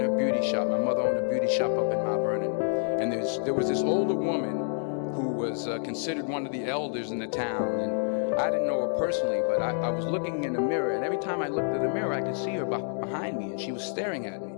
her beauty shop. My mother owned a beauty shop up in Mount Vernon. And there was this older woman who was considered one of the elders in the town. And I didn't know her personally, but I was looking in the mirror, and every time I looked at the mirror, I could see her behind me, and she was staring at me.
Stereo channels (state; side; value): silent; right; digital silence